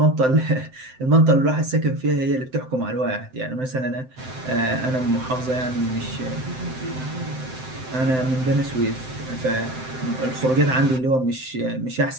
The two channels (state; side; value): late; left; 7.8 ms